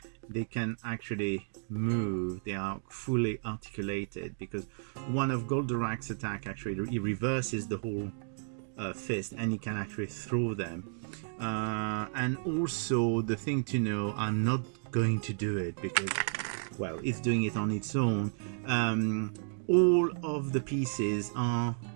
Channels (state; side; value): silent; left; digital silence